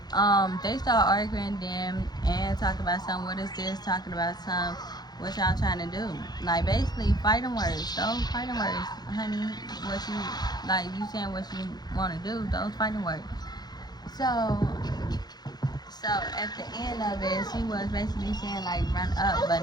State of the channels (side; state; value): right; late; 0.20 ms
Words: they start arguing them and talking about something. What is this? Talking about some. What y'all trying to do? Like basically fighting words. Those fighting words, honey. What you like? You saying what you want to do? Those fighting words. So at the end of it, she was basically saying like run up, but